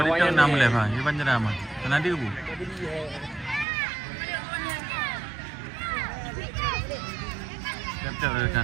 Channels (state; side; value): drops out; left; at 3.7 s